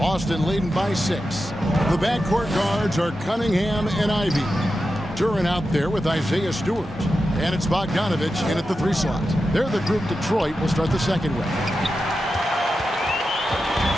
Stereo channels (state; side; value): normal; both; correlation 0.90